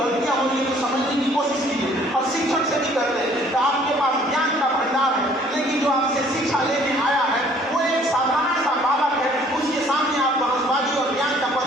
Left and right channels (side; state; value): both; normal; correlation 0.58